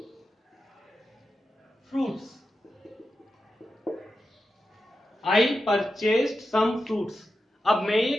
फ्रूट्स, आई परचेज्ड सम फ्रूट्स। अब मैं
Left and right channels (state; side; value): normal; both; correlation 0.90